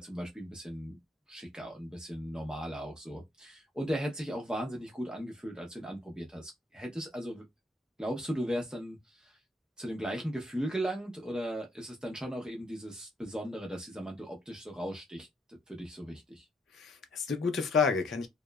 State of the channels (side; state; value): both; normal; correlation 0.73